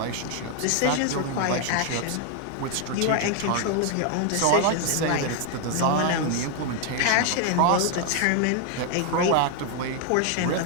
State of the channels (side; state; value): both; different; correlation 0.01